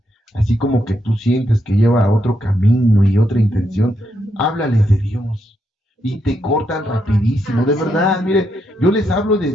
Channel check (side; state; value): both; normal; correlation 0.80